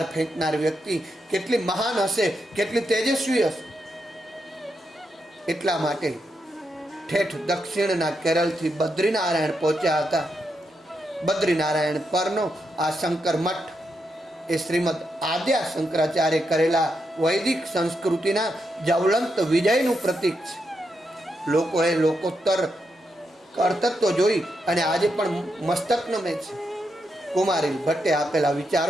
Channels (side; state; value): both; normal; correlation 0.83